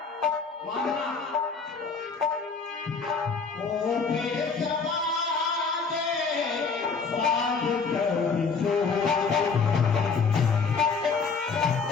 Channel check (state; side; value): quieter; right; 5.0 dB